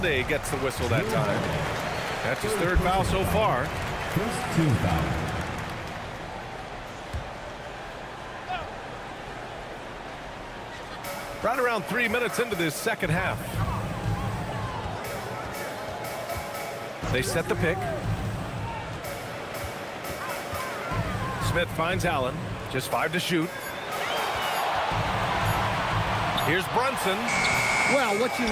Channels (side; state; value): both; identical; correlation 1.00